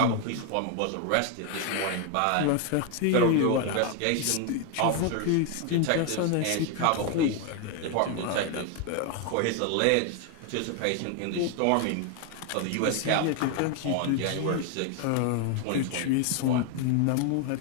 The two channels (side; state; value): both; different; correlation 0.00